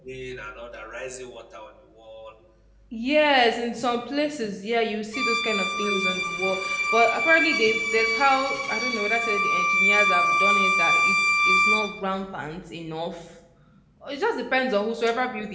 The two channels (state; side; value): identical; both; correlation 1.00